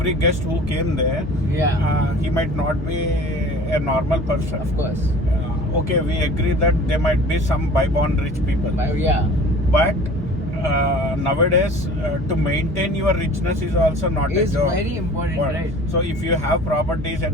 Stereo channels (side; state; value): both; normal; correlation 0.45